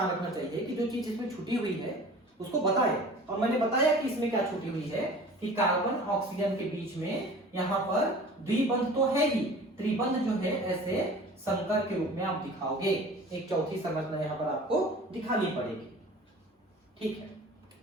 रखना चाहिए कि जो चीज इसमें छुटी हुई है उसको बताए। और मैंने बताया कि इसमें क्या छुटी हुई है कि कार्बन ऑक्सीजन के बीच में यहाँ पर द्विबंध तो है ही, त्रिबंध जो है ऐसे संकर के रूप में आप दिखाओगे। एक चौथी संरचना यहाँ पर आपको दिखानी पड़ेगी। ठीक है।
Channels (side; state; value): both; normal; correlation 0.43